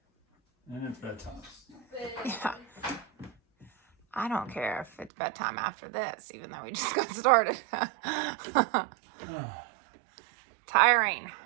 And it's bedtime. Yeah. I don't care if it's bedtime after this, even though we just got started. Tiring.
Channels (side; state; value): left; drops out; at 5.1 s